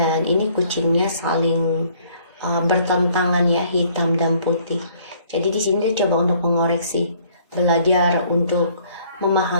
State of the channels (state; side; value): inverted; both; correlation -0.61